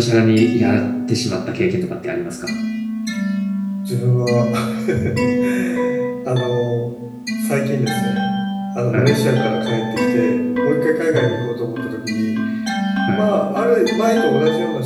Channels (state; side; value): identical; both; correlation 1.00